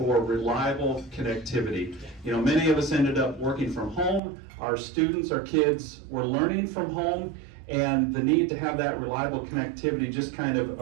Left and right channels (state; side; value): drops out; left; at 4.2 s